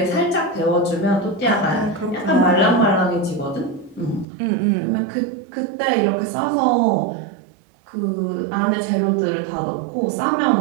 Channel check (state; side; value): drops out; left; at 4.2 s